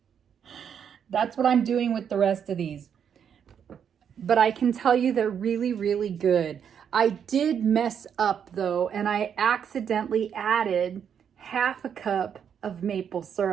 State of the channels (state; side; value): quieter; left; 8.0 dB